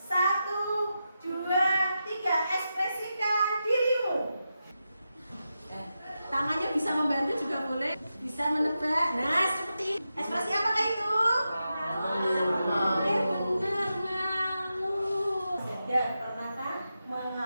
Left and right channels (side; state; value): both; inverted; correlation -0.89